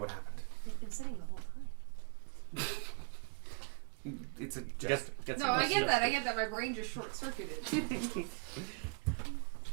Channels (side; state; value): left; quieter; 36.9 dB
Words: happened. They've been sitting the whole time. It's a jest. No, I get that. I get that. My brain just short-circuited.